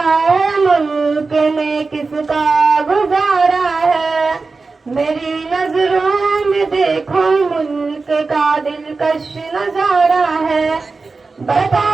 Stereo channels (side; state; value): left; quieter; 4.1 dB